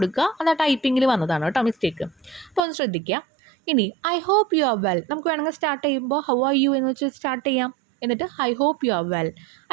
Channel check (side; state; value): left; drops out; at 2.6 s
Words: അത് ആ ടൈപ്പിങ്ങിൽ വന്നതാണ് കേട്ടോ മിസ്റ്റേക്ക്. അപ്പോൾ ഒന്ന് ശ്രദ്ധിക്കുക. ഇനി I hope you are well. നമുക്ക് വേണമെങ്കിൽ സ്റ്റാർട്ട് ചെയ്യുമ്പോൾ ഹൗ ആർ യു എന്ന് വെച്ച് സ്റ്റാർട്ട് ചെയ്യാം. എന്നിട്ട് I hope you are well.